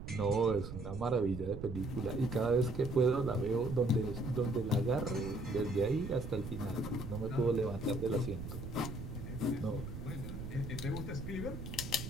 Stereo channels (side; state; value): right; noise; rumble, 8 dB below the sound